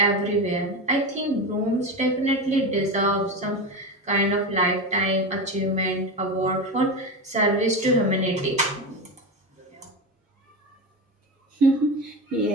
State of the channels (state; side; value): normal; both; correlation 0.20